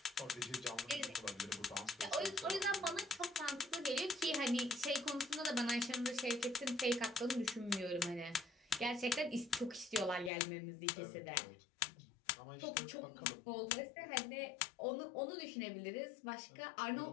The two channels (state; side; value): drops out; right; at 10.3 s